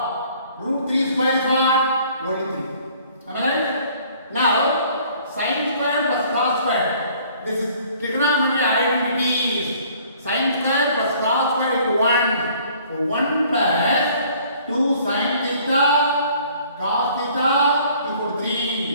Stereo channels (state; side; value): inverted; both; correlation -0.56